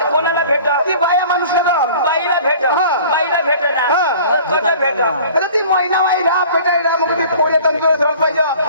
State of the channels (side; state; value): both; inverted; correlation -0.47